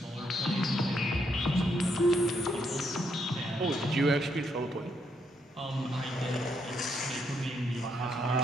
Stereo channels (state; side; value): normal; both; correlation 0.76